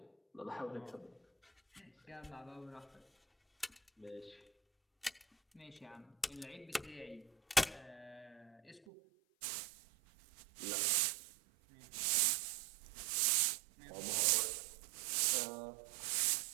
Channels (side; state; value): left; drops out; at 8.8 s